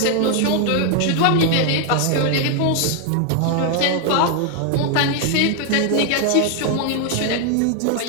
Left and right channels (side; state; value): both; different; correlation 0.00